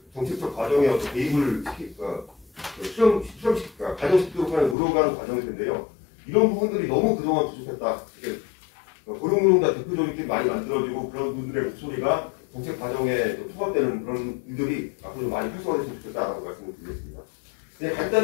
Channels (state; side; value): drops out; right; at 4.8 s